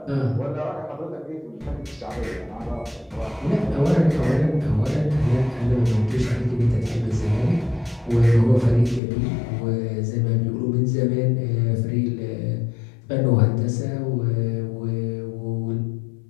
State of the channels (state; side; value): drops out; right; at 9.0 s